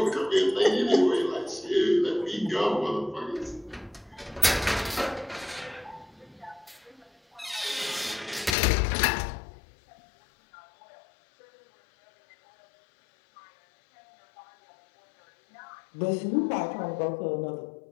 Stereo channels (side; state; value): right; drops out; at 8.6 s